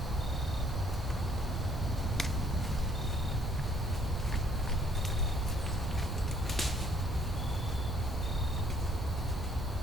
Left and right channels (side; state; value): right; noise; rumble, 3 dB below the sound